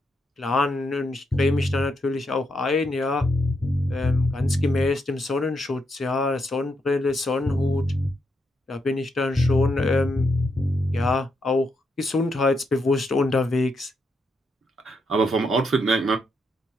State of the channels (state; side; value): normal; both; correlation 0.80